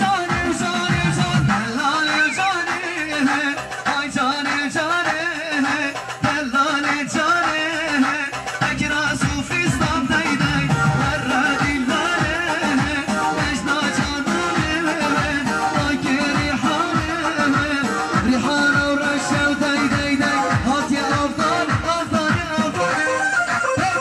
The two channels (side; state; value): both; identical; correlation 1.00